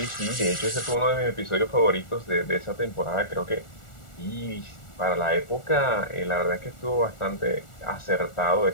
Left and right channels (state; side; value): late; right; 1.4 ms